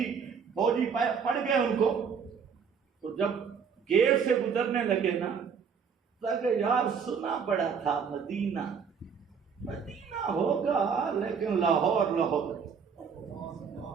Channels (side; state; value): left; quieter; 6.4 dB